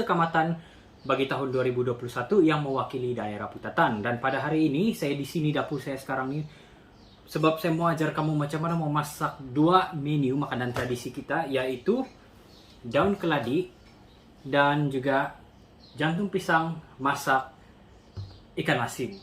Kamatan bagi tahun 2021 yang mewakili daerah putatan. Dan pada hari ini saya di sini dapur saya sekarang ini sebab saya mau ajar kamu macam mana memasak dua menu makanan tradisi kita, yaitu daun keladi dan juga jantung pisang masak ikan asin.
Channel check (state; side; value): identical; both; correlation 1.00